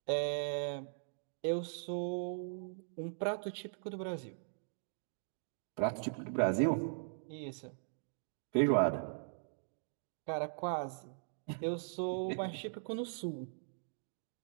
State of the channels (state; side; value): silent; left; digital silence